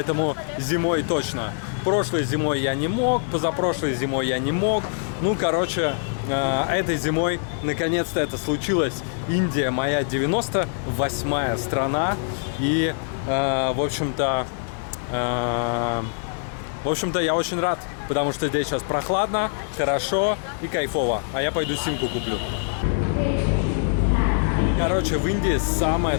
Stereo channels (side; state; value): right; silent; digital silence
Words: зимой точно. Прошлой зимой я не мог, позапрошлой зимой я не мог. Ну, короче, этой зимой наконец-то это случилось. Индия моя 98-я страна. И, в общем-то, я очень рад, потому что здесь сейчас прохладно, хорошо и кайфово. А я пойду симку куплю. Короче, в Индии